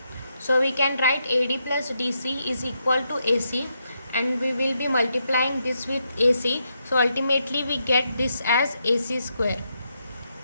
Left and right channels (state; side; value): inverted; both; correlation -0.81